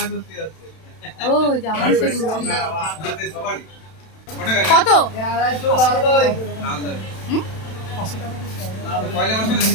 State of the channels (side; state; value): right; late; 32 ms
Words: ও জামাই ষষ্ঠী কত?